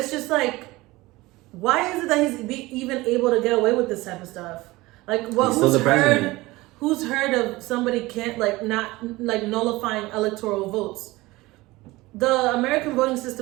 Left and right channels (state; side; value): quieter; left; 20.3 dB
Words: just like, why is it that he's even able to get away with this type of stuff? Like, what? Who's heard of somebody can't not nullifying electoral votes? The American voting